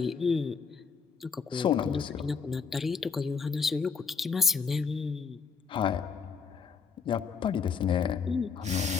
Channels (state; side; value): quieter; right; 5.6 dB